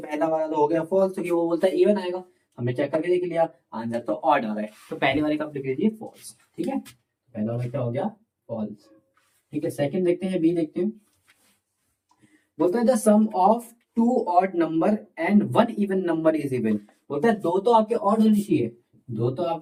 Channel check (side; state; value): both; identical; correlation 1.00